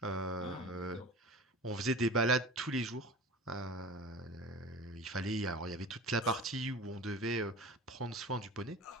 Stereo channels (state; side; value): normal; both; correlation 0.36